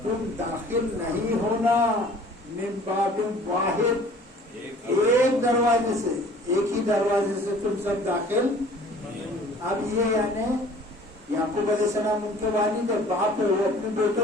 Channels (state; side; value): normal; both; correlation 0.50